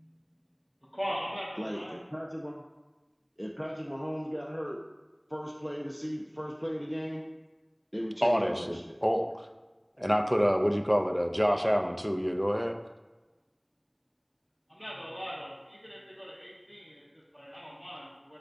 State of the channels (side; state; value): both; identical; correlation 1.00